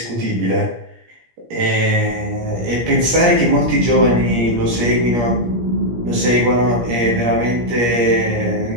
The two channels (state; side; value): late; left; 17 ms